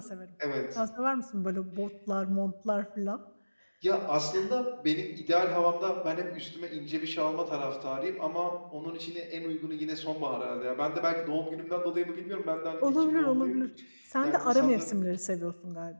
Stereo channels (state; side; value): inverted; both; correlation -1.00